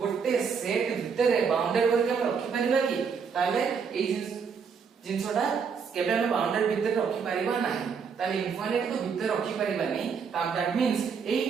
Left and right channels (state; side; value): quieter; left; 6.1 dB